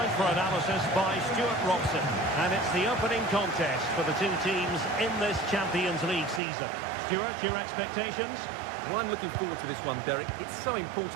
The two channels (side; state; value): left; drops out; at 6.4 s